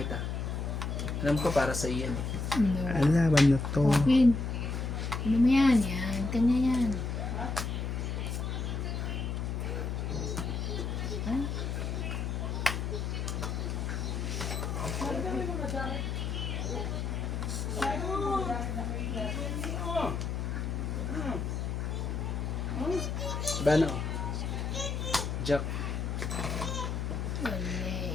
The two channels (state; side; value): noise; left; hum, 2 dB below the sound